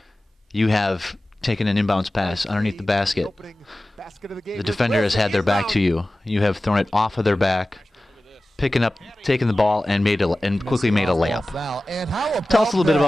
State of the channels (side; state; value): both; normal; correlation 0.96